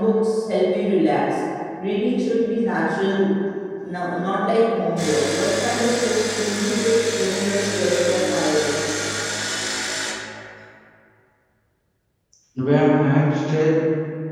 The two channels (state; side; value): identical; both; correlation 1.00